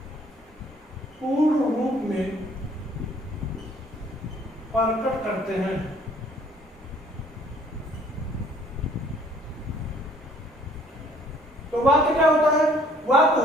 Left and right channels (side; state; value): both; normal; correlation 0.58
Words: पूर्ण रूप में प्रकट करते हैं। तो वाक्य क्या होता है? वाक्य